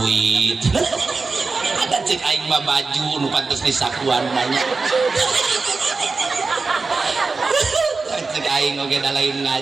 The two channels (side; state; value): left; quieter; 4.1 dB